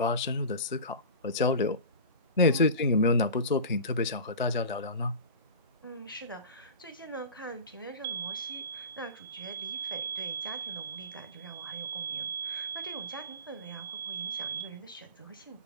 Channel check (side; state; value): both; inverted; correlation -0.31